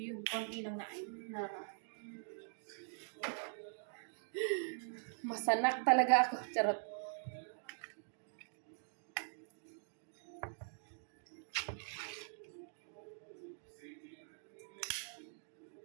yun, konti lang na masanak talaga ako. Charot.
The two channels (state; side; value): silent; left; digital silence